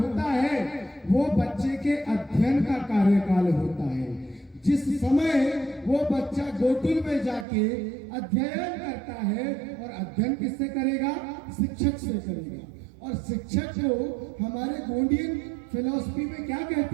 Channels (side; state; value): left; drops out; at 7.5 s